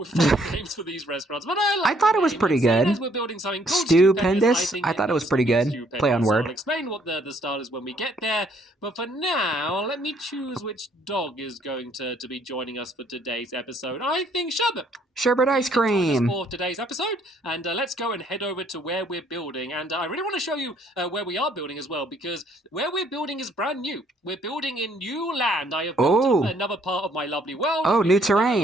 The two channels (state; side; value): normal; both; correlation 0.65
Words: names for these restaurants, but I thought it was pretty good. We're building something called Stupendous. I thought it was pretty good. Play on word. I'll explain what the style is when we get there, but for now, let me choose which dog is going to be joining us for today's episode. I think Sherbet. Sherbet ice cream. For today's episode, and let's go and head over to where we're building. And I really want to show you where we are building as well, because where we're building is brand new. We're building in new land. I have built another part of my lovely world. Oh, new